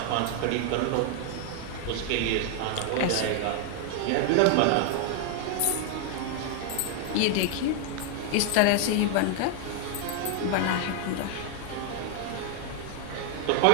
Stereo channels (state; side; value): different; both; correlation 0.00